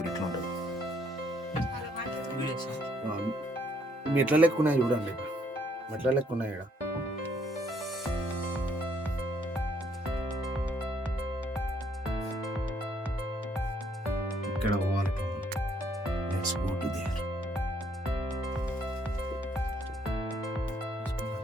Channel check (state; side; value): normal; both; correlation 0.68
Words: ఎట్లా ఉంటుంది. మెట్ల లెక్క ఉన్నాయి చూడండి, మెట్ల లెక్క ఉన్నాయి ఇక్కడ. ఇక్కడ పోవాలి, లెట్స్ గో టు దేర్.